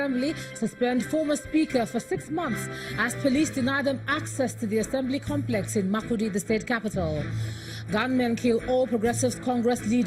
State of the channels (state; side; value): identical; both; correlation 1.00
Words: suspend former Speaker for 6 months as police deny them access to the Assembly complex in Makurdi, the state capital. Gunmen kill All Progressives Congress